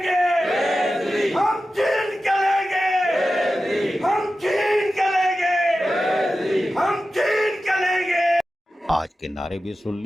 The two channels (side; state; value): both; normal; correlation 0.93